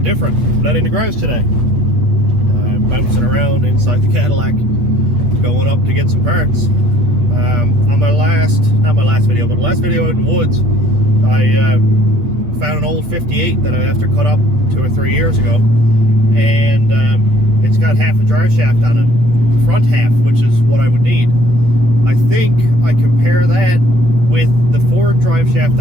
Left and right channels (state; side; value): late; left; 8.7 ms